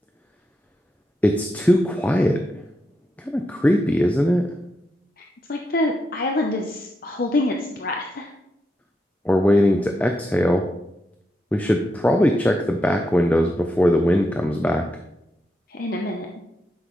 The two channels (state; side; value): normal; both; correlation 0.84